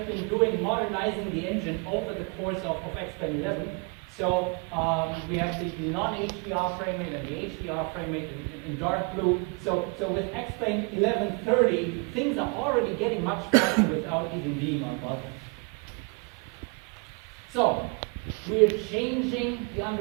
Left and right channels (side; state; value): left; quieter; 32.1 dB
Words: been doing, modernizing the engine over the course of Xplane 11. So we have the non-HDR frame rate and the HDR frame rate in dark blue. So with Xplane 1130, things are already getting much faster without even being on Vulkan. So we're changing the